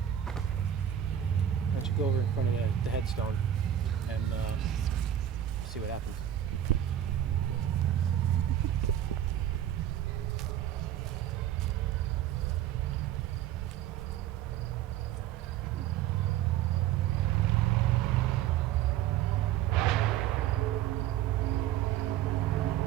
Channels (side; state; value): left; quieter; 11.1 dB